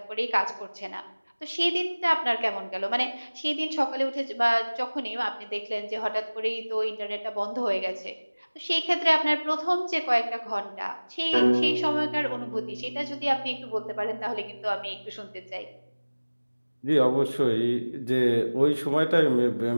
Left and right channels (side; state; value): both; inverted; correlation -1.00